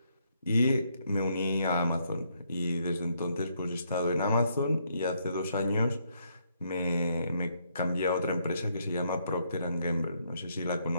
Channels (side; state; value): both; inverted; correlation -0.73